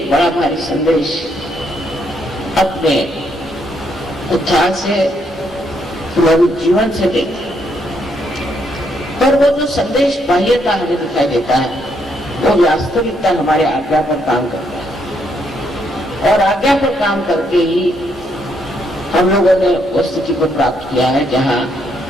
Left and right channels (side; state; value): both; normal; correlation 0.74